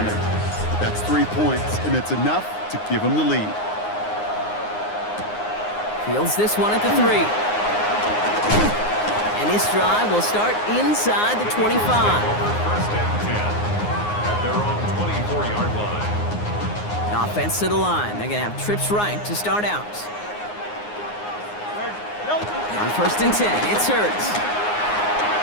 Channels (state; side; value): late; right; 9.6 ms